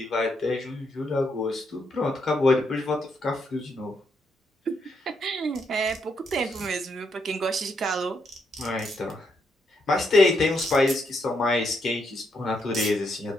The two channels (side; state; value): both; normal; correlation 0.78